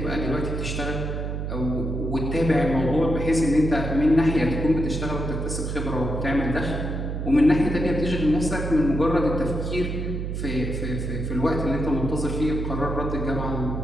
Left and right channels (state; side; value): noise; right; hum, 3 dB below the sound